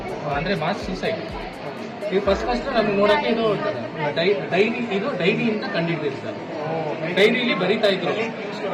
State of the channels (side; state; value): both; identical; correlation 1.00